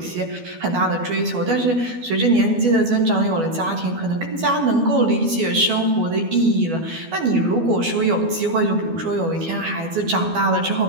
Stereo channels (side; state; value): left; late; 12 ms